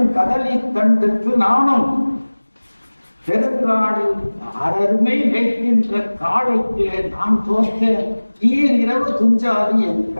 கதலி கண்டுக்கு நானும் பெருங்காடு அருமை வைக்கின்ற காளைக்கு நான் தோற்ற இரவு துஞ்சாது என்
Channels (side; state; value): both; inverted; correlation -1.00